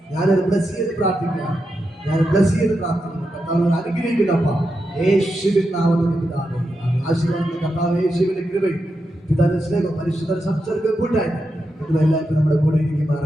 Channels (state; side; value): normal; both; correlation 0.87